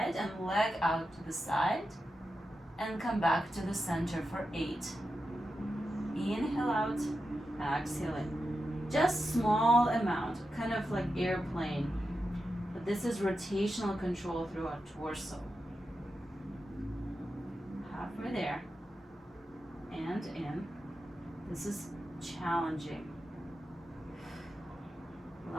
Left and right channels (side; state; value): both; normal; correlation 0.89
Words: and leg out to the side and come back to the center for 8. Inhale out, exhale in. Just small amount, kind of like airplane. But this is rotational control through our torso. Halfway there and in. This is challenging.